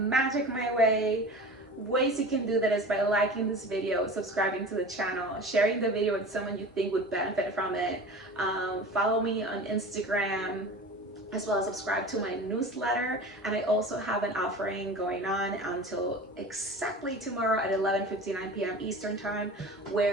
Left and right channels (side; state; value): both; normal; correlation 0.35